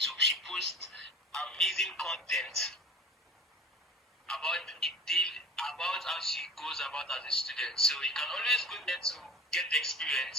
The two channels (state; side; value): normal; both; correlation 0.40